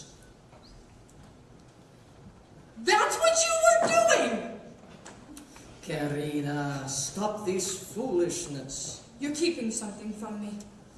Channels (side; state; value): both; identical; correlation 1.00